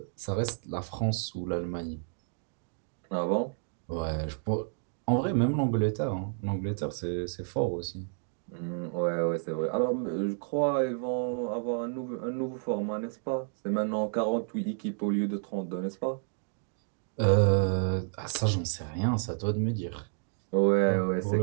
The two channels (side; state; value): left; silent; 57 dB below the other